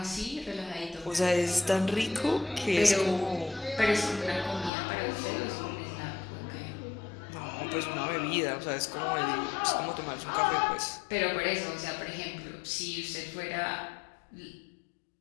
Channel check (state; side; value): drops out; right; at 4.7 s